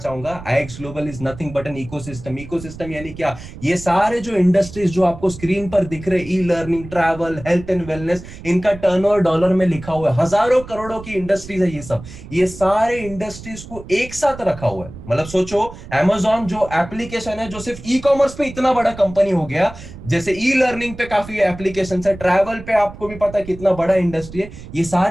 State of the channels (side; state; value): right; noise; rumble, 14 dB below the sound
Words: IX global is nothing but an ecosystem. Ecosystem यानी क्या? ये सारे जो इंडस्ट्रीज जो आपको स्क्रीन पर दिख रहे, e learning, travel, health and wellness, इनका टर्नओवर डॉलर में लिखा हुआ है। हजारों करोड़ों की इंडस्ट्रीज है ये सब। ये सारे इंडस्ट्रीज को एक साथ रखा हुआ है। मतलब सोचो अमेजॉन जो एप्लीकेशन है जो सिर्फ ई कॉमर्स पे इतना बड़ा कंपनी हो गया, जैसे ई लर्निंग पे काफी एप्लीकेशन है, ट्रैवल पे आपको भी पता है कितना बड़ा इंडस्ट्री है, ये